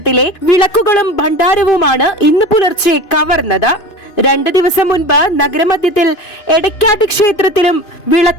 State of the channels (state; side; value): late; right; 2.9 ms